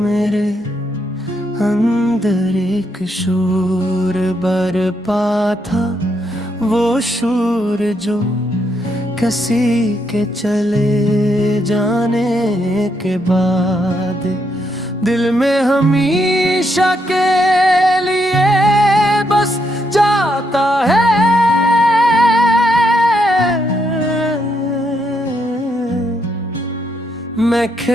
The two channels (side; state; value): both; normal; correlation 0.77